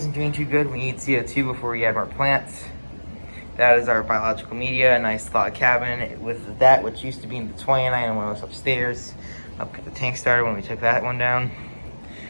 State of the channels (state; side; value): inverted; both; correlation -1.00